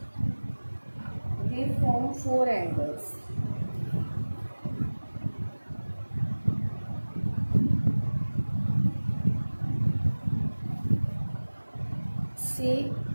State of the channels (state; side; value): inverted; both; correlation -1.00